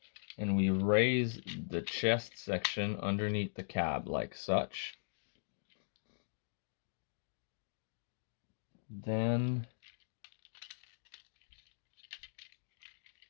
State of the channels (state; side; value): silent; right; digital silence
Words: and we raise the chest section underneath the cab like such. Then